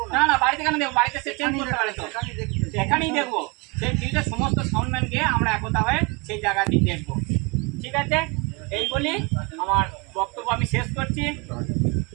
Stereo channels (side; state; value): left; quieter; 29.2 dB